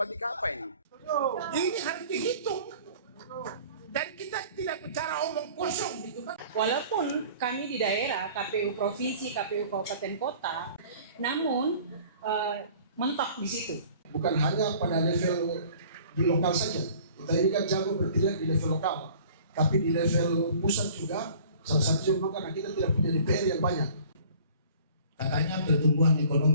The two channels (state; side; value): inverted; both; correlation -0.49